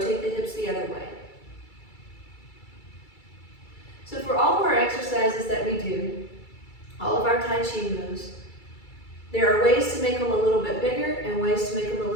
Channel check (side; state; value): right; late; 2.3 ms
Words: the hips the other way. So for all of our exercises that we do, all of our Tai Chi moves, there are ways to make them a little bit bigger and ways to make them a